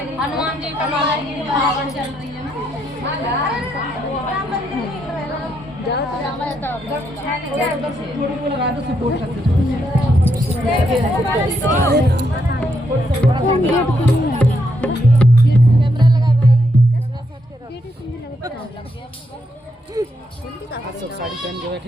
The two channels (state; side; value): normal; both; correlation 0.78